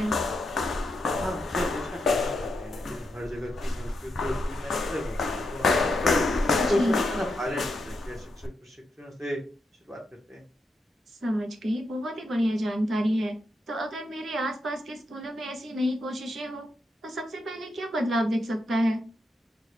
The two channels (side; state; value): both; normal; correlation 0.84